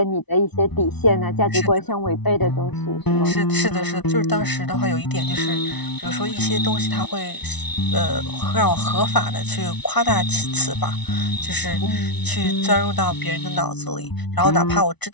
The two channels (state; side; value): late; right; 1.0 ms